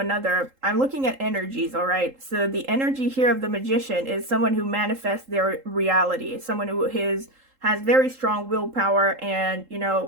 I'm looking at energies, all right? So the energy here of the Magician is someone who manifests their reality, someone who is has very strong willpower, and, you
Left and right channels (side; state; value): left; late; 3.8 ms